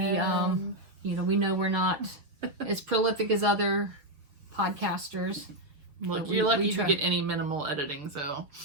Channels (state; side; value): late; left; 6.7 ms